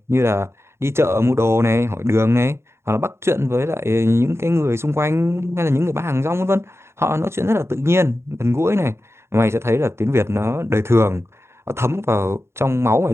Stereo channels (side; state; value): left; late; 0.13 ms